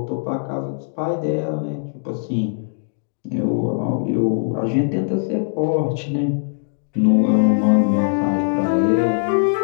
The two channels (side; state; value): right; silent; digital silence